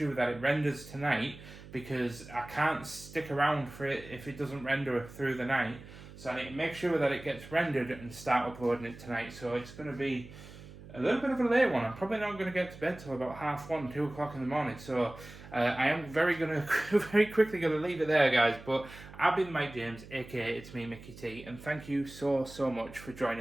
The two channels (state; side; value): noise; right; hum, 17 dB below the sound